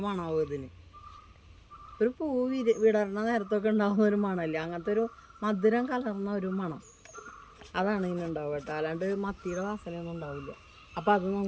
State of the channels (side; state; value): both; identical; correlation 1.00